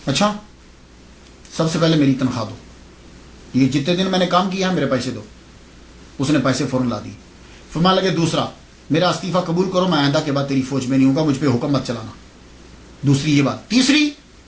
اچھا سب سے پہلے میری تنخواہ دو، یہ جتنے دن میں نے کام کیا ہے میرے پیسے دو۔ اس نے پیسے فوراً لا دی۔ فرمانے لگے دوسرا میرا استعفیٰ قبول کرو، میں آئندہ کے بعد تیری فوج میں نہیں ہوں گا، مجھ پہ حکم مت چلانا۔ دوسری یہ بات۔ تیسری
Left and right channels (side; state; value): both; identical; correlation 1.00